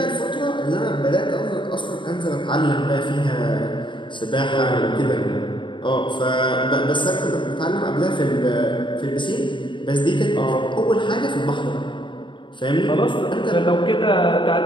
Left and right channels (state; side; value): late; right; 0.23 ms